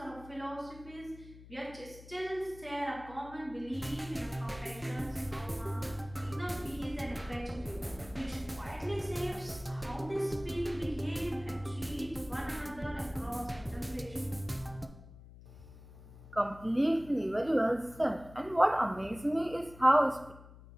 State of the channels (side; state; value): left; noise; hum, 18 dB below the sound